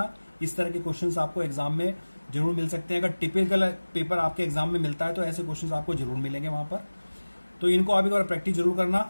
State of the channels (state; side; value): inverted; both; correlation -1.00